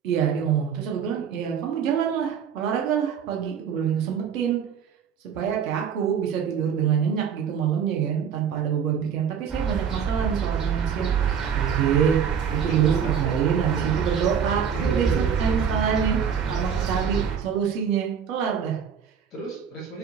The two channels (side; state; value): left; quieter; 7.5 dB